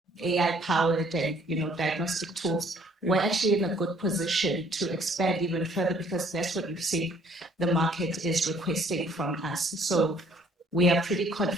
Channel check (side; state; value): both; normal; correlation 0.60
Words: AI powered and diagnostic tools, we're actually in a good position to expand even further, because that's what we've seen the market is requesting from us. So we are pretty